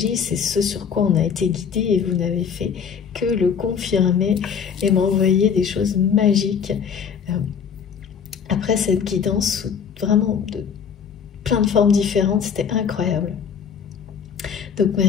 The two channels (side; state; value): right; quieter; 7.0 dB